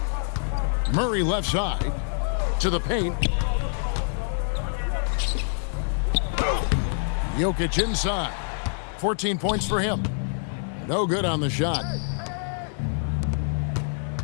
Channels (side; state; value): right; silent; 56 dB below the other